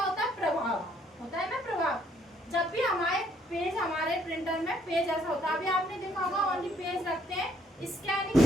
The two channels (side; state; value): both; normal; correlation 0.67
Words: होता है? प्रभाव होता है ना, प्रभाव। जब भी हमारे प्रिंटर में पेज ऐसा होता है, अभी आपने देखा होगा ओनली पेज रखते हैं, स्कैनिंग